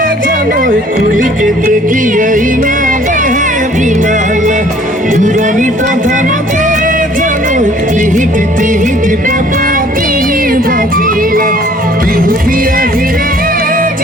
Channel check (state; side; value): normal; both; correlation 0.56